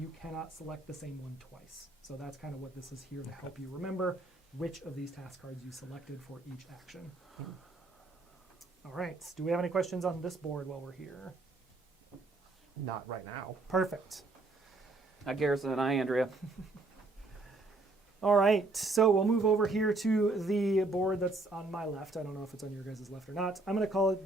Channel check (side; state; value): left; quieter; 3.1 dB